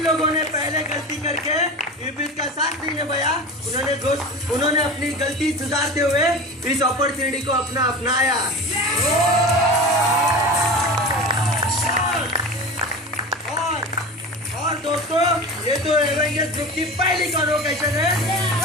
लोगों ने पहले गलती करके इब्लिस का साथ नहीं निभाया, उन्होंने अपनी गलती सुधारते हुए इस अपॉर्चुनिटी को अपनाया। और दोस्तों, ये तो एवेंजर्स ग्रुप की पहली कन्वोकेशन है।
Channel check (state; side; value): normal; both; correlation 0.31